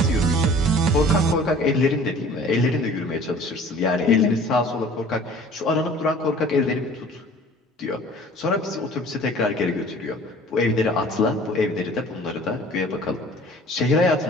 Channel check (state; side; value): normal; both; correlation 0.48